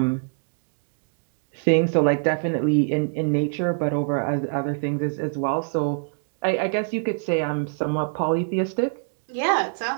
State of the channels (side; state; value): left; silent; digital silence